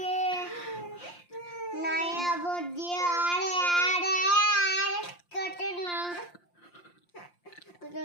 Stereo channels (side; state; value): right; late; 5.7 ms